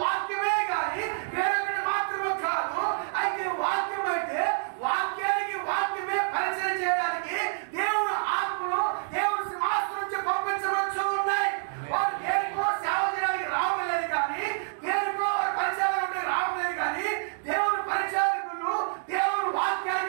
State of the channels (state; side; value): silent; left; digital silence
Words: వాక్యమే కానీ వేరొకటి మాత్రమే కాదు. అయితే వాక్యం అయితే వాక్యానికి వాక్యమే పరిచయం చేయడానికి దేవుడు ఆత్మలు దేవుడు సింహాసనం నుంచి పంపించవచ్చు ఉన్నాయి. వారు దేనికో సేవ చేయడానికి రావలేదు, కానీ దేనికో పరిచయాలు రావలేదు, కానీ దేవుడు పరిచారకులు దేవుడు